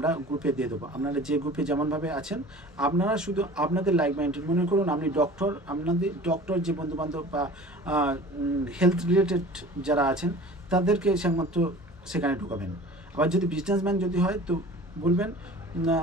গ্রুপে দিয়ে দেবো। আপনারা যে গ্রুপে যেমনভাবে আছেন, আপনারা শুধু আপনাদের লাইক মাইন্ডেড, মনে করুন আপনি ডক্টর, আপনাদের ডক্টর যে বন্ধুবান্ধব বা হেলথ রিলেটেড যারা আছেন তাদেরকে একমাত্র সেখানে ঢুকাবেন। আবার যদি বিজনেসম্যান যদি হয় তো বলবেন না,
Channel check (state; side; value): normal; both; correlation 0.42